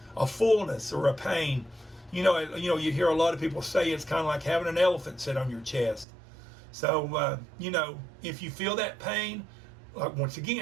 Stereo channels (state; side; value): drops out; left; at 6.1 s